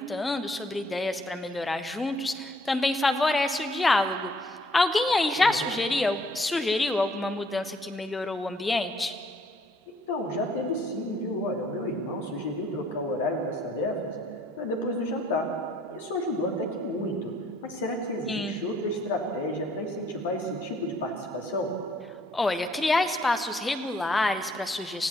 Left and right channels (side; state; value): both; normal; correlation 0.64